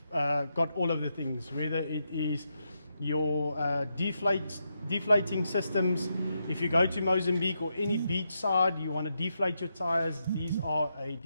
got all of the things, whether it is your deflating systems. If you go to Mozambique or any beach side, you want to deflate your tires, these are a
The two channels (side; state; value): both; inverted; correlation -0.83